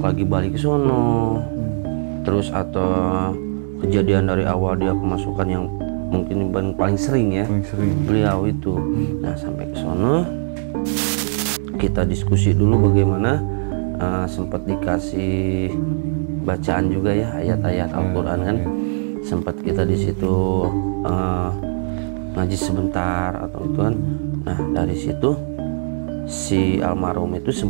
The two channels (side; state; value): left; silent; 63 dB below the other